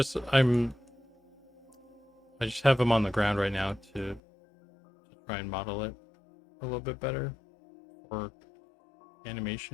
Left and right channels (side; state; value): right; drops out; at 4.2 s